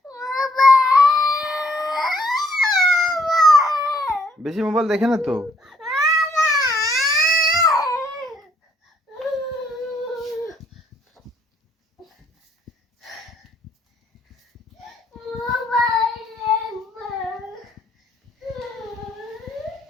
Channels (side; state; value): both; normal; correlation 0.66